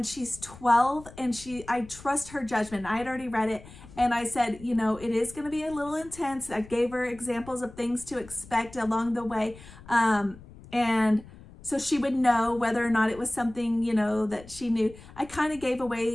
she's 12, and I trust her judgment. I had already read it, and I said, you know, it is going to be a little intense. I gave her examples of things to expect along the way. And so she would know whether or not it was something, you know, that she knew. I kind of gave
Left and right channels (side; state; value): left; noise; rumble, 19 dB below the sound